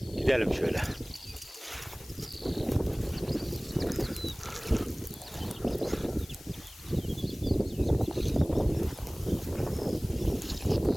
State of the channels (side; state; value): left; noise; hiss, 20 dB below the sound